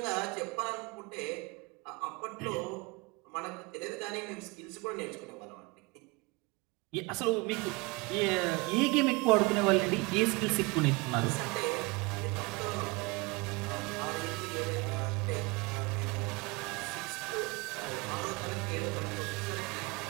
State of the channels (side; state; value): left; quieter; 26.6 dB